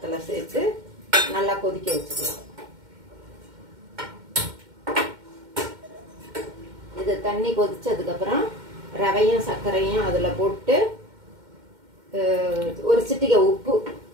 சேர்த்து நல்லா கொதிக்க வச்சுக்கலாம். இது தண்ணி கொதிச்சதுக்கப்புறம் ரவையும் சர்க்கரையும் அதில் போட்டு ஒரு சிட்டிகை உப்பு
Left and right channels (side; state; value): left; late; 2.1 ms